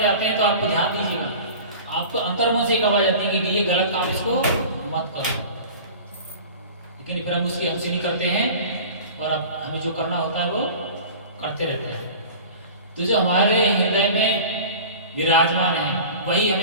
हैं तो आपको ध्यान दीजिएगा, आपको अंतर्मन से एक आवाज आती है कि ये गलत काम, इसको मत करो। लेकिन फिर हम उसकी हमसे नहीं करते हैं और अब हमें जो करना होता है वो करते रहते हैं। तो जो हमारे हृदय में विराजमान है वही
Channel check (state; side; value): inverted; both; correlation -0.38